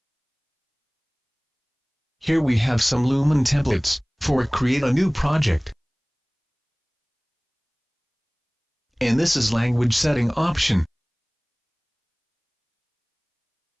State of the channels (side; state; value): both; identical; correlation 1.00